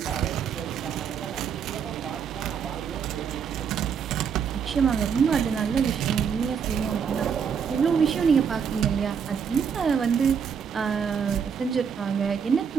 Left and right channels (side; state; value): left; quieter; 6.9 dB